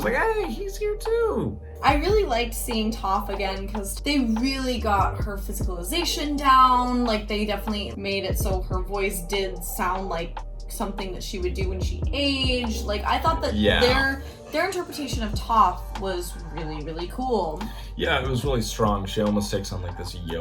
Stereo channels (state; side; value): identical; both; correlation 1.00